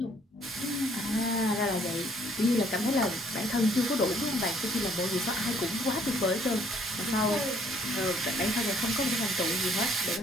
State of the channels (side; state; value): both; normal; correlation 0.63